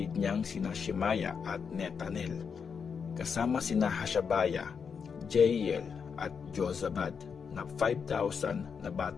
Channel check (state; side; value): quieter; right; 6.3 dB